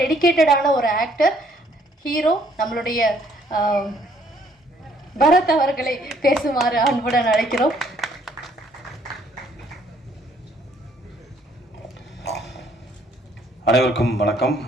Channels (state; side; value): normal; both; correlation 0.64